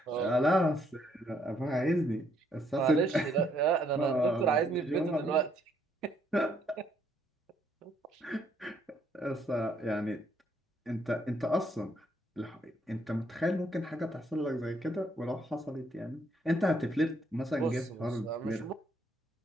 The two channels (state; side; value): normal; both; correlation 0.70